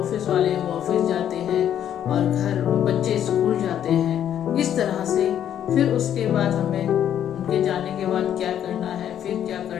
वाले हैं वो ऑफिस जाते हैं और घर बच्चे स्कूल जाते हैं। इस तरह से फिर उसके बाद हमें उनके जाने के बाद क्या करना है, फिर क्या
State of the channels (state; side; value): quieter; right; 10.1 dB